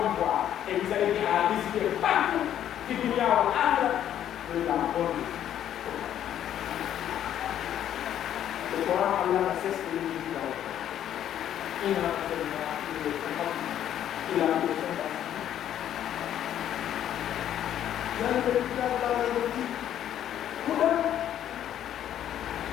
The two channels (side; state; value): right; quieter; 10.7 dB